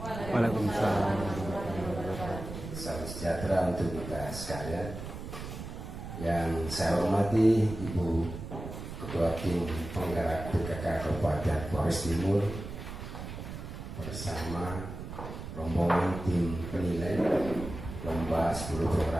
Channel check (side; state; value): right; noise; rumble, 9 dB below the sound